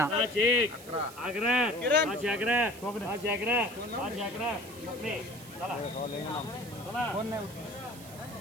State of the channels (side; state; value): right; noise; hiss, 17 dB below the sound